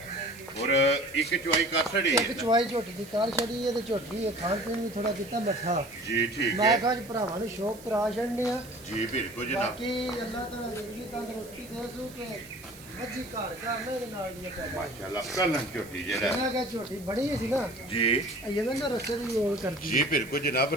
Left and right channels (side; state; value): right; noise; hiss, 19 dB below the sound